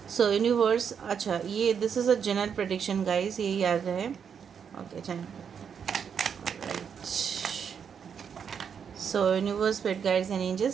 सो यूनिवर्स, अच्छा ये this is a general prediction guys, ये याद रहे। Okay, channel so universe, spirit guides and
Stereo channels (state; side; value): quieter; left; 7.2 dB